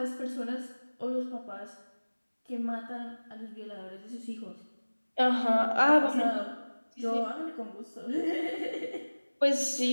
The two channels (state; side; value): inverted; both; correlation -1.00